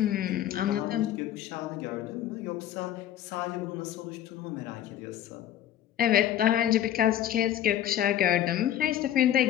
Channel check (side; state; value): right; quieter; 11.5 dB